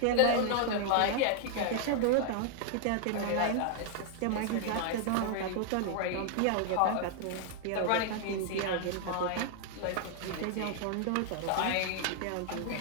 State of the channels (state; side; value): different; both; correlation 0.00